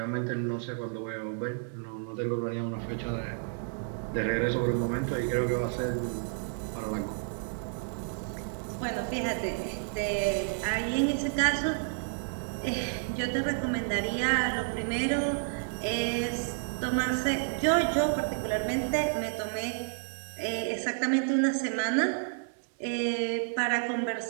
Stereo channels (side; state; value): left; silent; digital silence